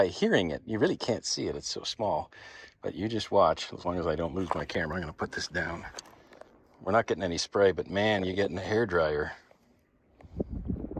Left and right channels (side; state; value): both; identical; correlation 1.00